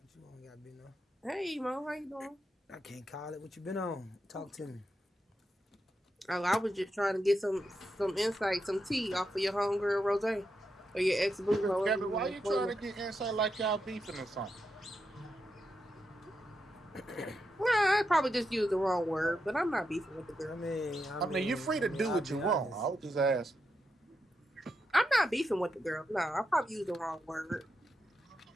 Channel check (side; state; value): both; normal; correlation 0.85